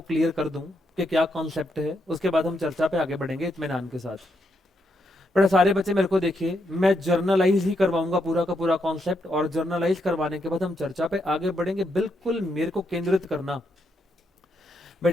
क्लियर कर दूं कि क्या कॉन्सेप्ट है, उसके बाद हम चर्चा पे आगे बढ़ेंगे इत्मीनान के साथ। पर सारे बच्चे मेरे को देखिए, मैं जर्नलाइज ही करवाऊंगा पूरा का पूरा कॉन्सेप्ट, और जर्नलाइज करवाने के बाद हम चर्चा पे आगे बढ़ेंगे। बिल्कुल मेरे को केंद्रित करना।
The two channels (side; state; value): both; normal; correlation 0.80